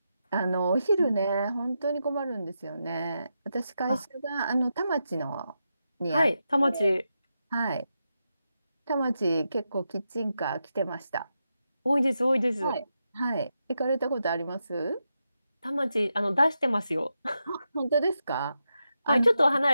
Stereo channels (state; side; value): inverted; both; correlation -0.87